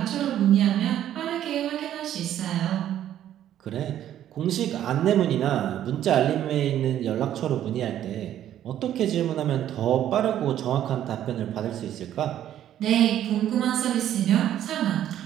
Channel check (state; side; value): quieter; left; 11.4 dB